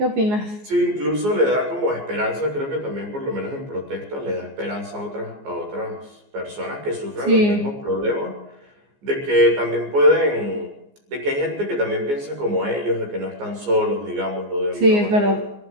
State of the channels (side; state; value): left; late; 14 ms